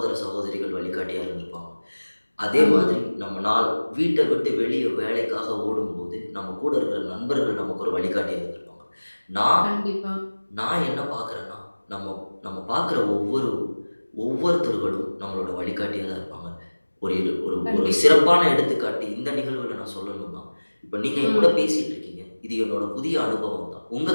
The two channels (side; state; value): both; inverted; correlation -1.00